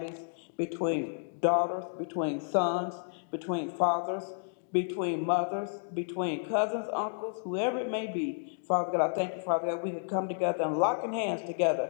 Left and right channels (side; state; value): right; silent; digital silence